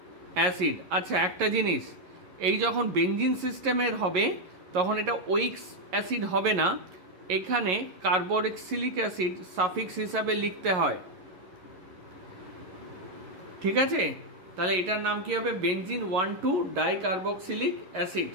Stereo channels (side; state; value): left; late; 11 ms